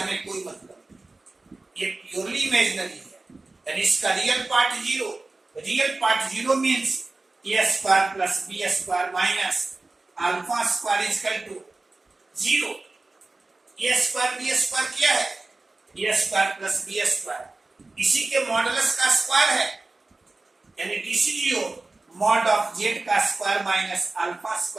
कोई मतलब नहीं, ये प्योरली इमेजिनरी है। यानी इसका real part zero, real part zero means A square plus B square minus alpha square is equal to zero. A square B square क्या है? A square plus B square, इसी के मॉडुलस का square है, यानी डीसीजीओ मॉड ऑफ जेड का square minus alpha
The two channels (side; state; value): left; quieter; 3.3 dB